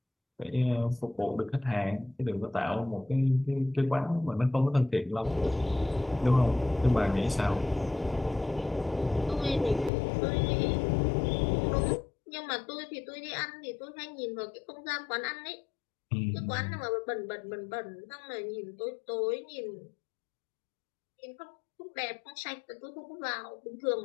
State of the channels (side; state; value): right; drops out; at 9.9 s